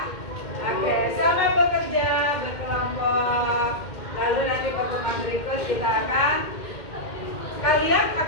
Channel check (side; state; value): right; late; 2.1 ms